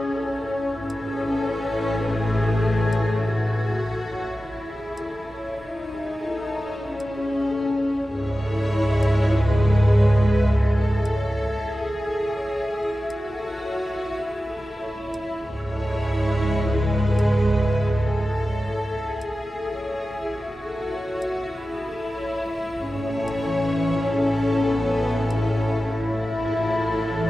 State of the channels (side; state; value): both; normal; correlation 0.94